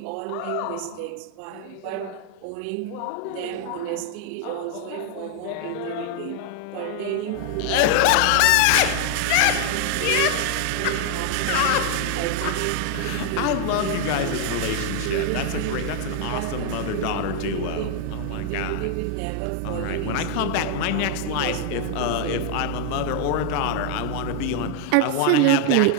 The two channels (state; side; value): different; both; correlation 0.00